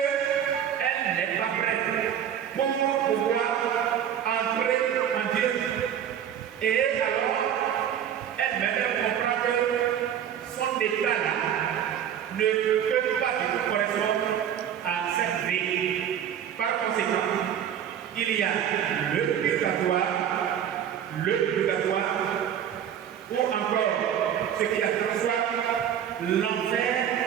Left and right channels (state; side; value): quieter; left; 9.4 dB